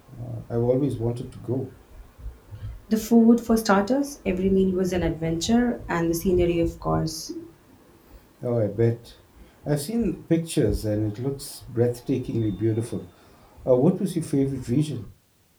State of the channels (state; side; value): identical; both; correlation 1.00